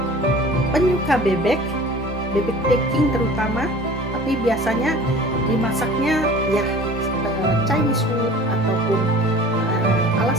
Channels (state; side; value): normal; both; correlation 0.43